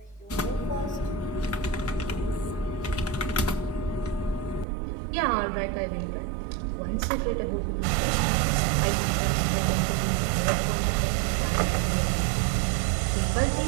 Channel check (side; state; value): left; drops out; at 4.7 s